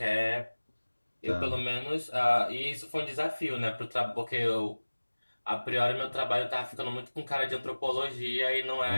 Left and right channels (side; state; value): both; inverted; correlation -1.00